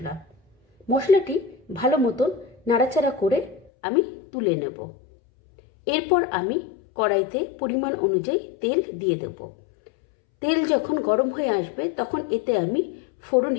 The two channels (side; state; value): right; drops out; at 3.7 s